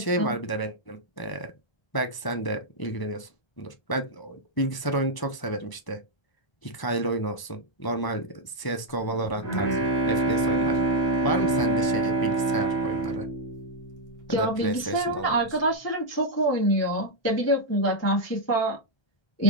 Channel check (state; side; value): late; right; 1.0 ms